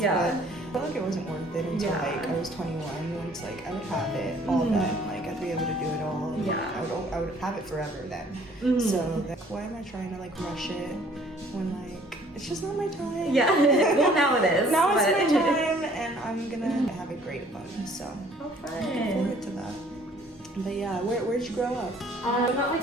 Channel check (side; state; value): both; normal; correlation 0.57